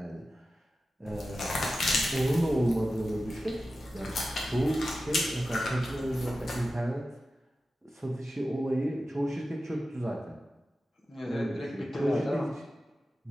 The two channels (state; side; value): normal; both; correlation 0.93